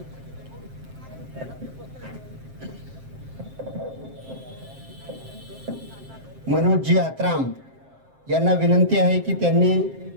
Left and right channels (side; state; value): left; late; 7.6 ms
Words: मनोजजी आत्राम यांना विनंती आहे की त्यांनी